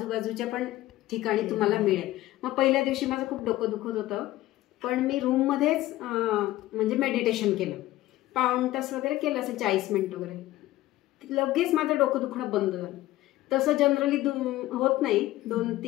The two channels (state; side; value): quieter; right; 16.2 dB